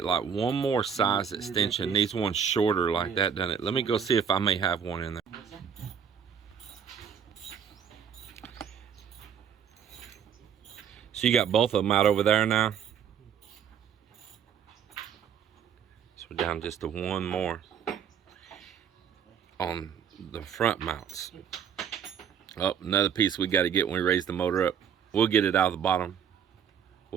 like one more size extension. Needs one shorter like that, doesn't it? Let me go see if I may have one in there. So you got both of them out over there now. So we're down just to one more on the front mounts. Oh, another piece we got to get when we raise the motor up. We'll get it out of the bottom.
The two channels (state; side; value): quieter; left; 7.8 dB